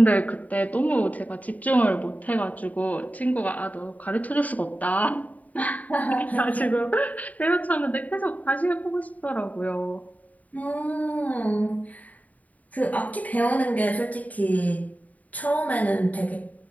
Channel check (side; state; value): right; late; 0.073 ms